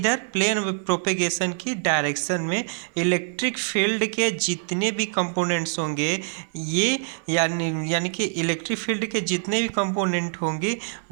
प्लेन प्रोपेगेशन की डायरेक्शन में। इलेक्ट्रिक फील्ड के जितने भी कंपोनेंट्स होंगे ये यानी कि इलेक्ट्रिक फील्ड के जितने भी कंपोनेंट होंगे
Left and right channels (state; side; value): silent; left; digital silence